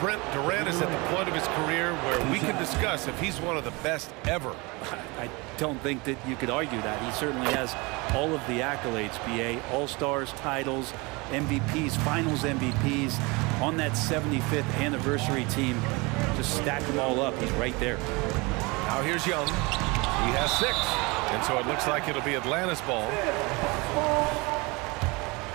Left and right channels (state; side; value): quieter; left; 26.0 dB